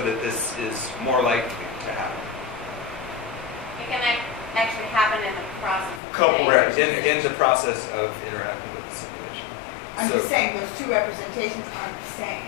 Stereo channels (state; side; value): drops out; right; at 6.0 s